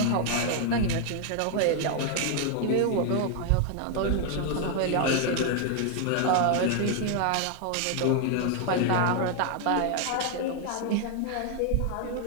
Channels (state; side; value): different; both; correlation 0.00